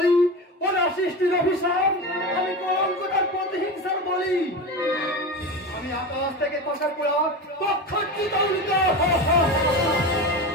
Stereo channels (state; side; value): normal; both; correlation 0.25